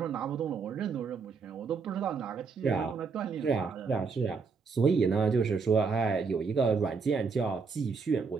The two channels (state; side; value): quieter; left; 5.1 dB